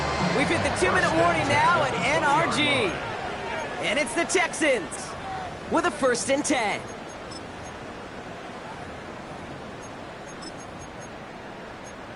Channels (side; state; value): both; identical; correlation 1.00